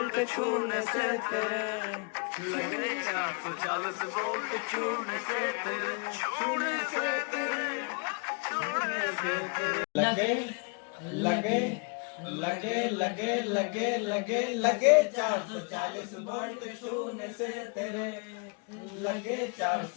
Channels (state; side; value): quieter; right; 35.5 dB